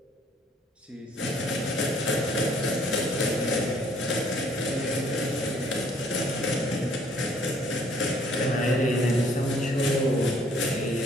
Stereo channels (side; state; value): both; normal; correlation 0.61